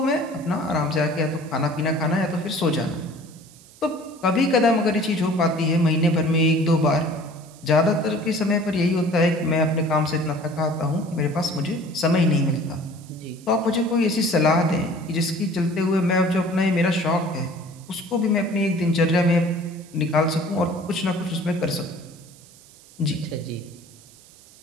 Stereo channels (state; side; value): noise; right; hiss, 24 dB below the sound